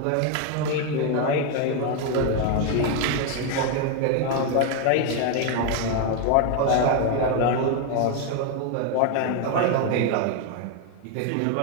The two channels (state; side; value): different; both; correlation 0.01